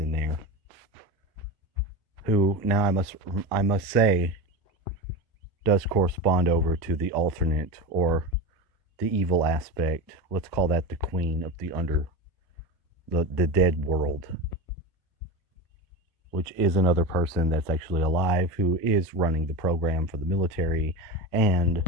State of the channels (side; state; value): both; normal; correlation 0.22